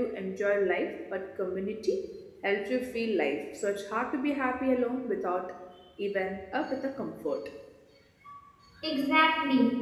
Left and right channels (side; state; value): both; identical; correlation 1.00